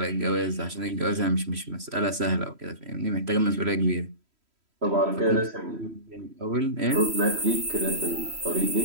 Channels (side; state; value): left; late; 3.1 ms